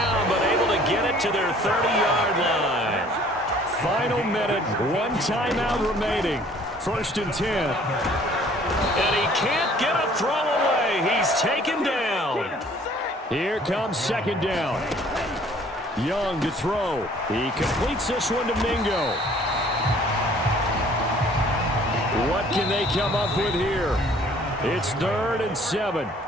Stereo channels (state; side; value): normal; both; correlation 0.55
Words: but able to get it to their 30-yard line. Final minute, 1 timeout remaining. 1st and 10. And he can't get a throw away. He's taken down. Here comes 2nd down. Young to throw. He completes this one to Mingo. What can they come up with here? It's 3rd and 7.